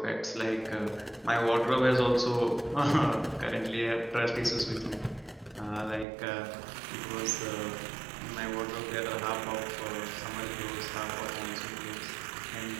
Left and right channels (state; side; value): drops out; left; at 6.1 s